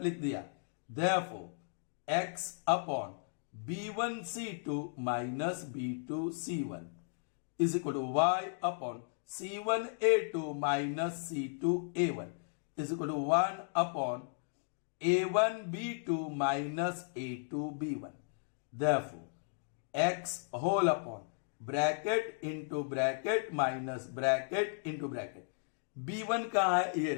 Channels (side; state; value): right; silent; digital silence